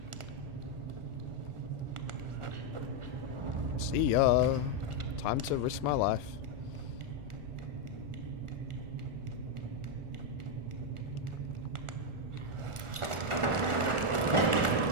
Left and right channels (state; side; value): late; left; 1.4 ms